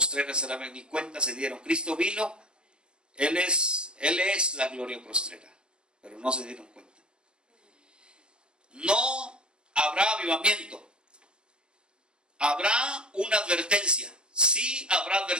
será mejor, ni cuenta se dieron. Cristo vino, Él es la gloria postrera, pero no se dieron cuenta. No habrá avivamiento. Habrá una advertencia. Sí habrá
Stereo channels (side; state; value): left; late; 0.050 ms